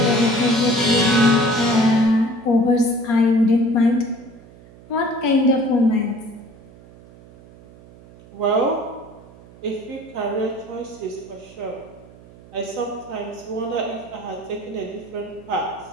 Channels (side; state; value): right; noise; hum, 22 dB below the sound